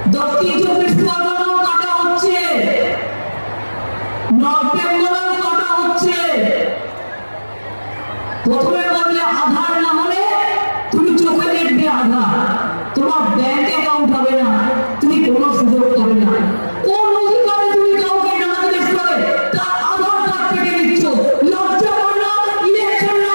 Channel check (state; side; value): inverted; both; correlation -1.00